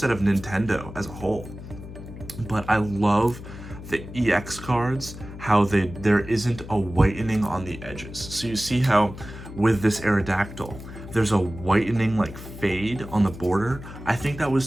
of Nintendo as a whole. But I love the EX cards, how there isn't a whitening on the edges. So you see how with this Aerodactyl, there's a whitening like fade on the border. I think that was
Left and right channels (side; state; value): left; noise; hum, 13 dB below the sound